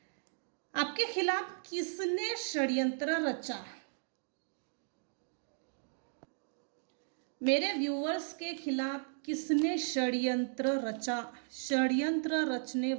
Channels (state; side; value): silent; left; digital silence